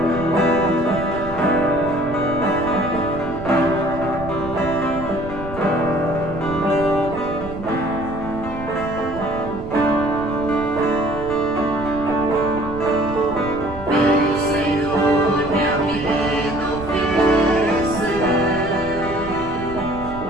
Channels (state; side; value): noise; right; rumble, 12 dB below the sound